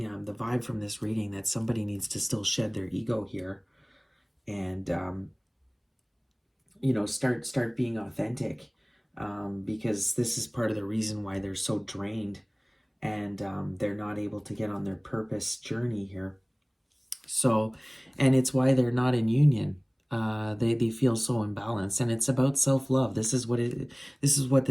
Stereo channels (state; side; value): identical; both; correlation 1.00